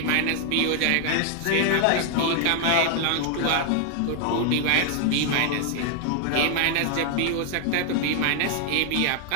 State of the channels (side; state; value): both; different; correlation 0.00